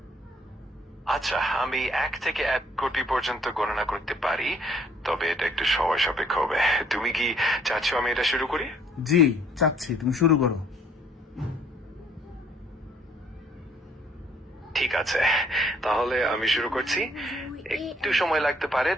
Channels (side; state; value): both; normal; correlation 0.62